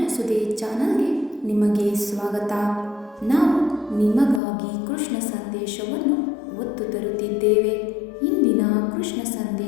ಸುದ್ದಿ ಚಾನಲ್ಗೆ ನಿಮಗೆ ಸ್ವಾಗತ. ನಾವು ನಿಮಗಾಗಿ ಕೃಷ್ಣ ಸಂದೇಶವನ್ನು ಒತ್ತು ತರುತ್ತಿದ್ದೇವೆ. ಇಂದಿನ ಕೃಷ್ಣ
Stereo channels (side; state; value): right; drops out; at 4.4 s